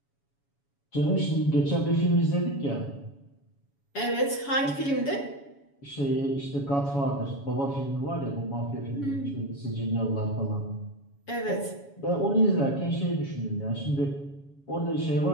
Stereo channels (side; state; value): right; late; 7.1 ms